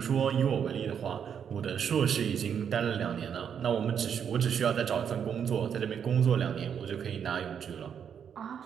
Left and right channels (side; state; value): left; quieter; 7.9 dB